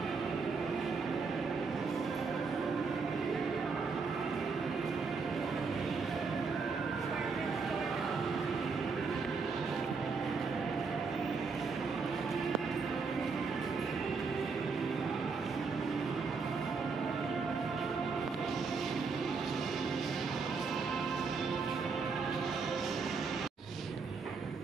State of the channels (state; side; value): quieter; left; 4.8 dB